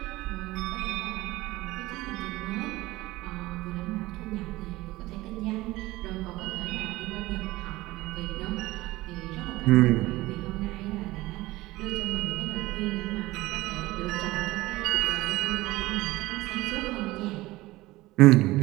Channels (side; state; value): left; quieter; 18.9 dB